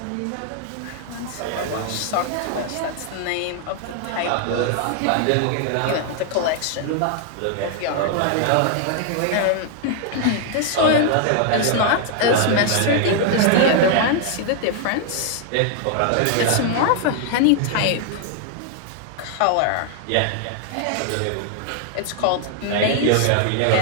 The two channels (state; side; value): different; both; correlation 0.00